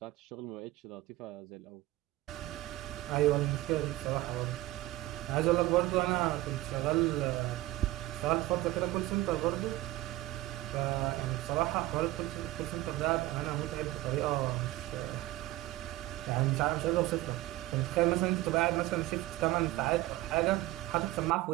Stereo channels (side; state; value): left; quieter; 17.0 dB